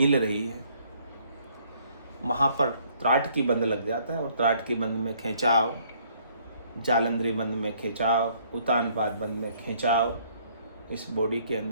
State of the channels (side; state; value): both; inverted; correlation -0.63